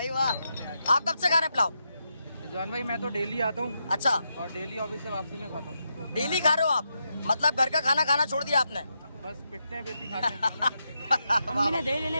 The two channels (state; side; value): inverted; both; correlation -0.84